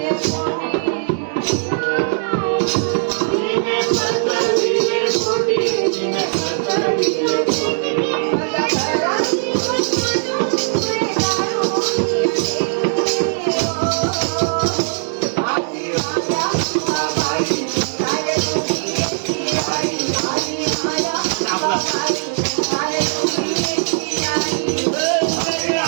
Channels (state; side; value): silent; left; digital silence